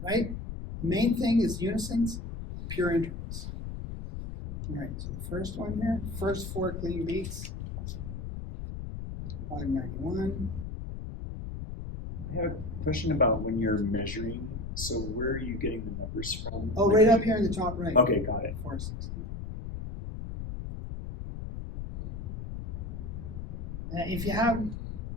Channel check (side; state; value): left; noise; rumble, 7 dB below the sound